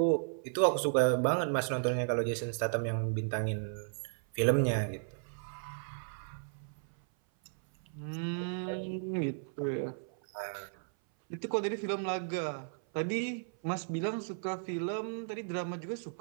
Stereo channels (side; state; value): left; silent; 55 dB below the other